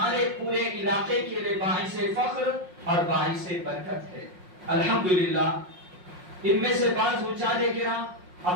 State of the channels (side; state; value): left; late; 5.5 ms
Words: پورے علاقے کے لیے باعث فخر اور باعث برکت ہے. الحمدللہ ان میں سے بعض حجاج کرام